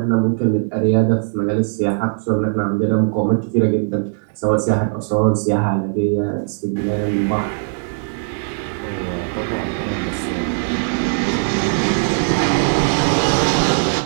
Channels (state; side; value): silent; left; digital silence